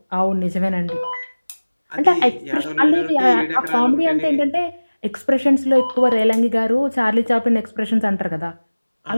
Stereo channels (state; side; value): inverted; both; correlation -1.00